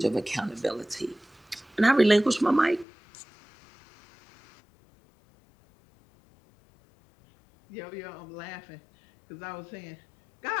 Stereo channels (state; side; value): drops out; right; at 2.9 s